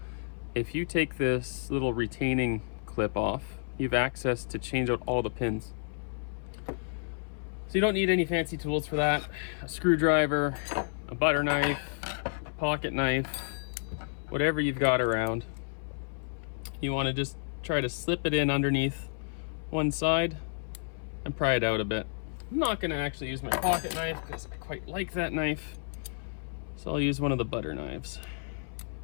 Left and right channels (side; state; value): right; silent; 57 dB below the other